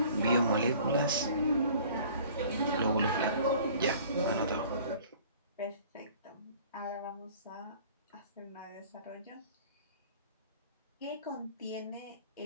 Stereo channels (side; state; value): both; inverted; correlation -0.49